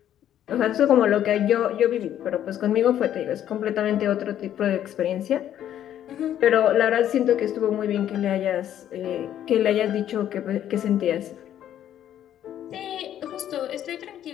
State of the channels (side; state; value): right; quieter; 11.0 dB